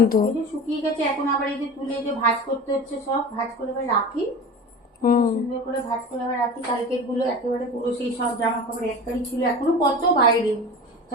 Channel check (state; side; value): normal; both; correlation 0.32